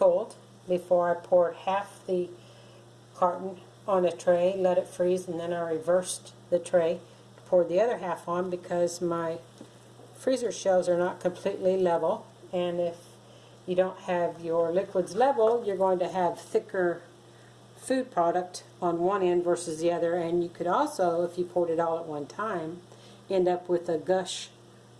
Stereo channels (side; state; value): both; identical; correlation 1.00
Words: before I poured half the carton on a tray, let it freeze, and then I reversed the tray to pour the other half on because my freezer shelves are not completely level, and if you don't have your liquids level, you're going to have thicker food product on one end versus the other, and you could also, if you poured it all at one time, end up with a gush